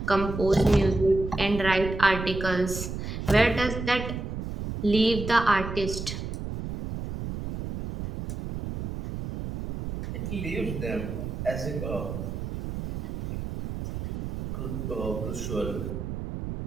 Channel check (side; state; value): right; noise; rumble, 6 dB below the sound